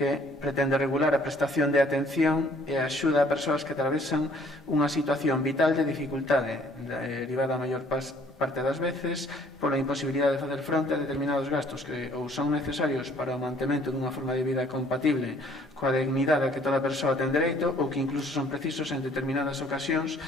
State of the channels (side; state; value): both; normal; correlation 0.59